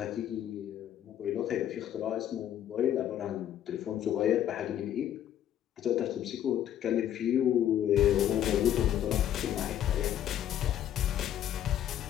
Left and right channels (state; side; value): quieter; right; 10.8 dB